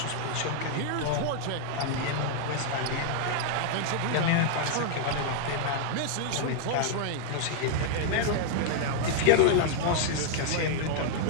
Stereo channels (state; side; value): different; both; correlation -0.01